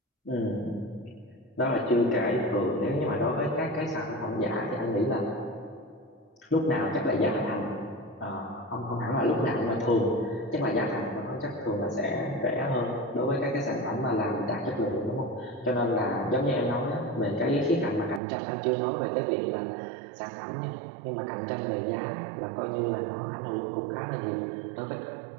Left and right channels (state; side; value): drops out; left; at 18.2 s